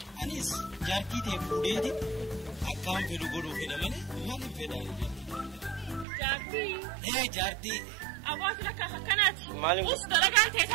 Anis jarti de fudedi. Akkam fedhu godhuu fedha malee maaliif fedhaan? Jaartii. Jaartii. Abbootii lakka akkanaati. Maaliif? Us dalagaan ta'e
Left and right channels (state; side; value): drops out; left; at 6.1 s